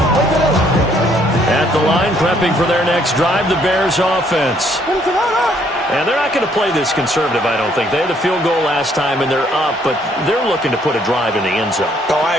At the line, prepping for their next drive, the Bears offense. And they're not going to play this conservative, I don't think. They had the field goal last time, and they're up, but they're looking to put a drive in the end zone. Oh, I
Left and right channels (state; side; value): normal; both; correlation 0.66